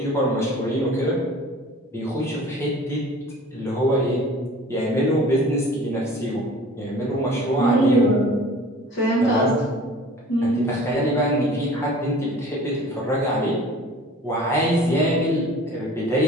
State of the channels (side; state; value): both; normal; correlation 0.45